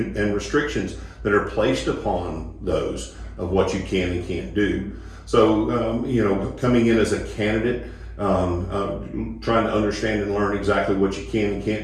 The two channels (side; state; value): both; identical; correlation 1.00